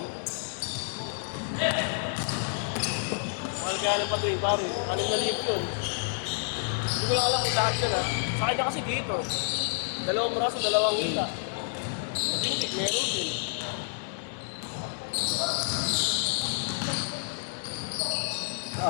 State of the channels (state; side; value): silent; right; digital silence